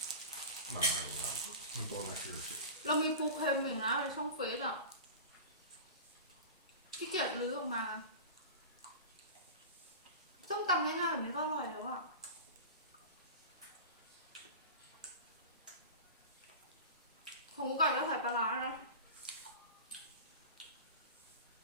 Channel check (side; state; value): both; inverted; correlation -0.31